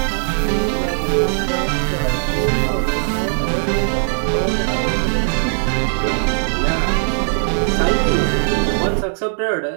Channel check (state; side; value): silent; left; digital silence